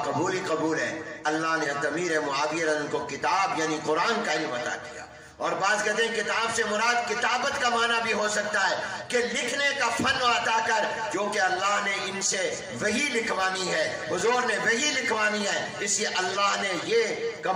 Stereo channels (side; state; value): both; identical; correlation 1.00